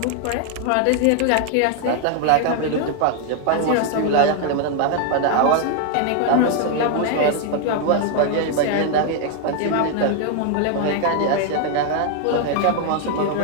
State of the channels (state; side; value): different; both; correlation 0.00